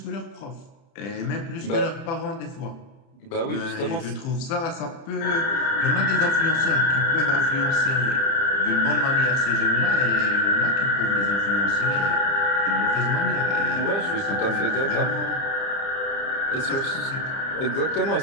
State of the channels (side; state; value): right; late; 30 ms